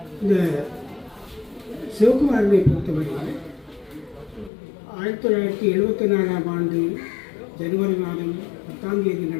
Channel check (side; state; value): right; drops out; at 4.5 s